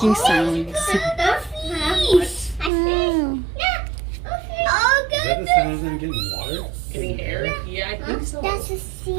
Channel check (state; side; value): drops out; left; at 2.7 s